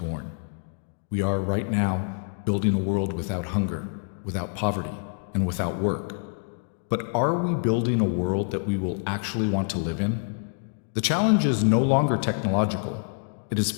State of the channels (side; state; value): right; silent; digital silence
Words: We are right now building a world without hunger, without poverty, and without work. But are we building a world that we will actually want to live in? The challenge is no longer technological, it